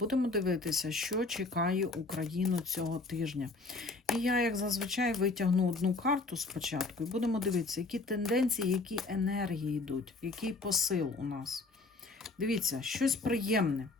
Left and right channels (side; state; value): right; quieter; 3.5 dB